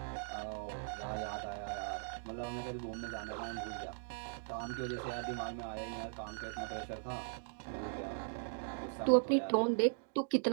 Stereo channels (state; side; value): silent; left; digital silence